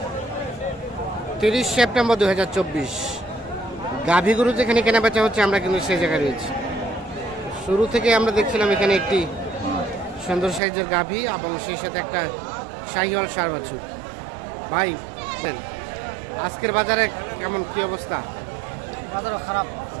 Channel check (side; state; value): left; drops out; at 10.6 s